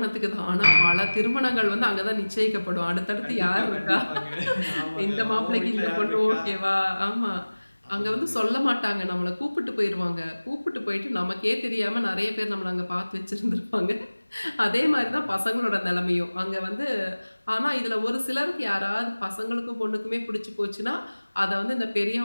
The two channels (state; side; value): inverted; both; correlation -1.00